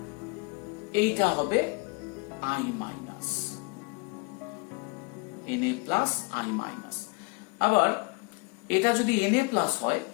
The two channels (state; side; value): quieter; right; 29.5 dB